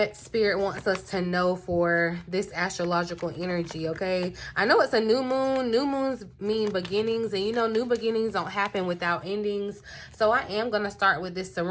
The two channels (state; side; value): identical; both; correlation 1.00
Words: Spirit wants us to know for this astrological energy, okay? I know it's a new moon. New moons mean beginnings, and you know, new beginnings don't happen without endings. So I am going to start with this